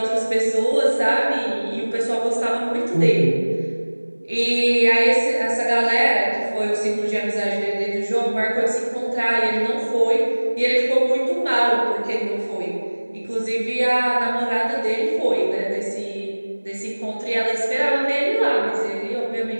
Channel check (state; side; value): inverted; both; correlation -1.00